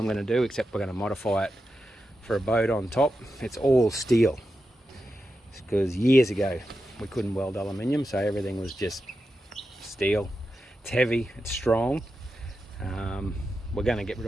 going to do, except we're going to modify it for a boat on top. It's all steel, because years ago we couldn't weld aluminium, so everything was just steel. It's heavy, it's strong. We're going to get rid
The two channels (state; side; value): normal; both; correlation 0.89